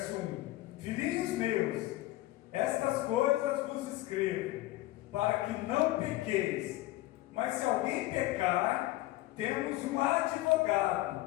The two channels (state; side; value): quieter; right; 17.2 dB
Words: 1. Filhinhos meus, estas coisas vos escrevo, para que não pequeis. Mas se alguém pecar, temos um